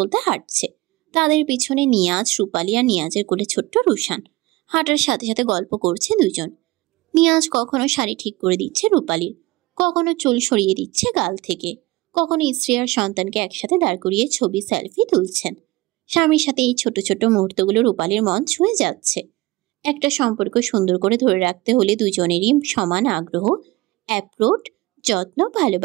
হাঁটছে। তাদের পিছনে নিয়াজ, রূপালী আর নিয়াজের কোলে ছোট্ট রুশান। হাঁটার সাথে সাথে গল্প করছে দুজন। নিয়াজ কখনো শাড়ি ঠিক করে দিচ্ছে রূপালীর, কখনো চুল সরিয়ে দিচ্ছে গাল থেকে, কখনো স্ত্রী আর সন্তানকে একসাথে দাঁড় করিয়ে ছবি, সেলফি তুলছেন। স্বামীর সাথে এই ছোট ছোট মুহূর্তগুলো রূপালীর মন ছুঁয়ে যাচ্ছে। একটা সম্পর্ক সুন্দর করে ধরে রাখতে হলে দুজনেরই সমান আগ্রহ, অ্যাপ্রোচ, যত্ন,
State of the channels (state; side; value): quieter; left; 20.0 dB